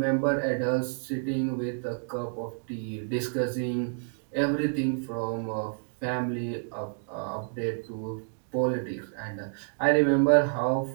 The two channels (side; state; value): left; silent; digital silence